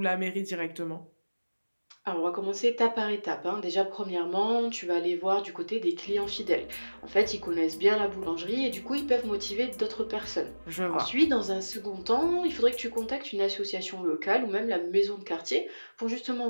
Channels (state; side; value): inverted; both; correlation -1.00